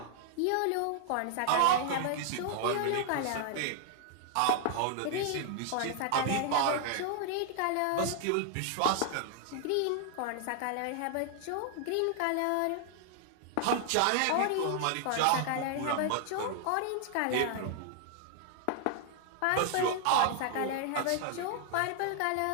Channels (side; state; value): both; different; correlation 0.00